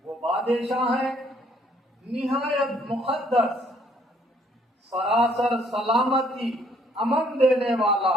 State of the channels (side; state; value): both; normal; correlation 0.64